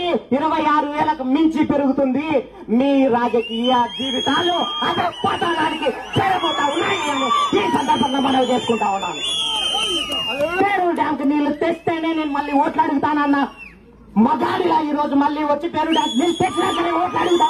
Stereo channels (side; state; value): both; identical; correlation 1.00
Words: 26,000కు మించి పెరుగుతుంది. మీ రాజకీయ జీవితాలు అదే పతనానికి చేరబోతా ఉన్నాయి అని ఈ సందర్భంగా మనం చేసుకుంటా ఉన్నాను. పేరు డ్యాంకు నీళ్లు తెస్తేనే నేను మళ్ళీ ఓట్లు అడుగుతానన్న మగాడిలా ఈ రోజు మళ్ళీ వచ్చి పేరు డ్యాంకు నీళ్లు తెచ్చినాకనే ఓట్లు అడుగుతా